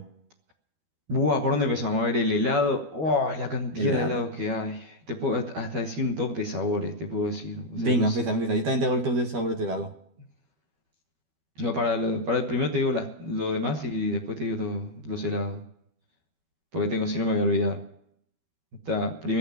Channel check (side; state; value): left; late; 12 ms